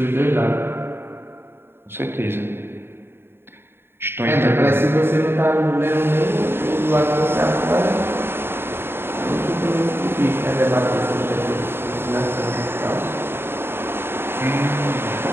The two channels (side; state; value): left; late; 0.11 ms